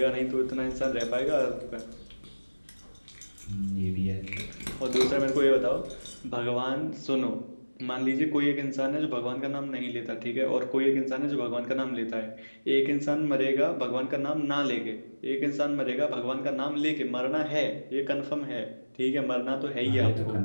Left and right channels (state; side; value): inverted; both; correlation -1.00